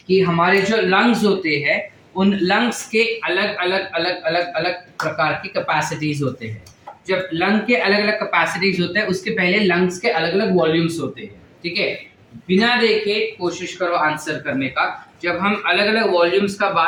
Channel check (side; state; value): both; identical; correlation 1.00